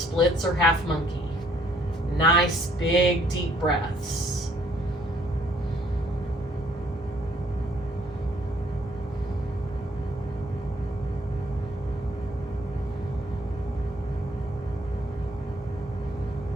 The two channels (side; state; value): both; normal; correlation 0.65